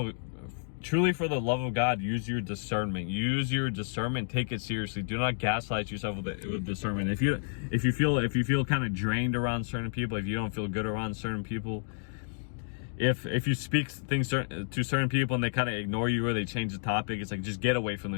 God, use your discernment. Use your discernment. Take it seriously. Do not gaslight yourself with discernment. If you feel kind of drained around certain people, if you don't feel good around certain people, if you speak things to certain people and they kind of ignore you, or they change the topic, it's like, just get away from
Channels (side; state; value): right; silent; digital silence